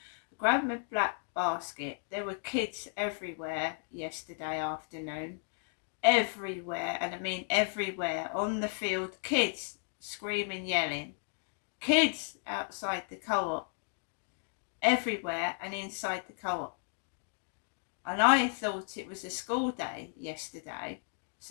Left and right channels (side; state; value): right; silent; 55 dB below the other